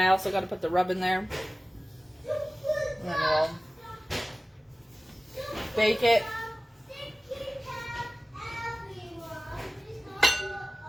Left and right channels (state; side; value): normal; both; correlation 0.97